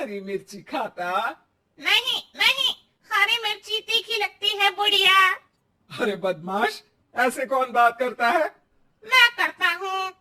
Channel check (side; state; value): both; identical; correlation 1.00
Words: मिर्ची खाता। नहीं नहीं, हरी मिर्ची तीखी लगती है बुढ़िया। अरे बदमाश, ऐसे कौन बात करता है? मैं करता हूँ।